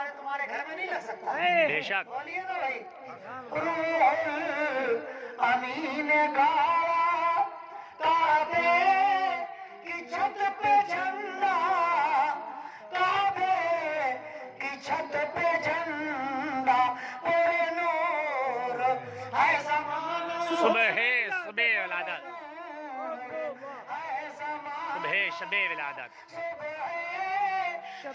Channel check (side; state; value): both; identical; correlation 1.00